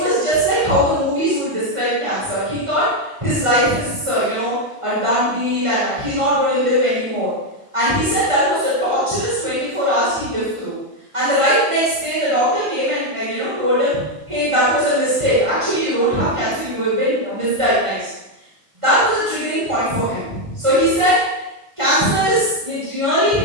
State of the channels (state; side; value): late; left; 1.5 ms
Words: just like how the movies would describe cancer. He thought his life is, a done deal and he's not going to live anymore. And he said that was a torturous 24 hours he lived through. And the right next day, the doctor came and told him, hey, that was a mistake. Actually, you don't have cancer, you have been misdiagnosed. That was a triggering point for him. So he said, it really